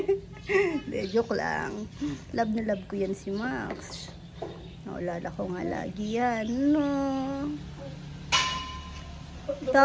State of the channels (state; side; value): identical; both; correlation 1.00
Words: De, joke lang. Love na love ko yan si Max. Naulala ko nga lagi yan. No.